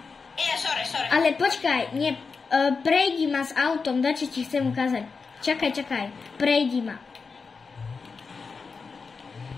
Je, sorry. Ale počkaj, nie, prejdi ma s autom, dačo ti chcem ukázať. Čakaj, prejdi ma.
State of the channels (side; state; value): right; quieter; 4.9 dB